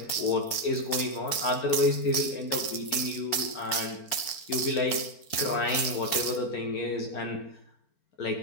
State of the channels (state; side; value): late; right; 4.4 ms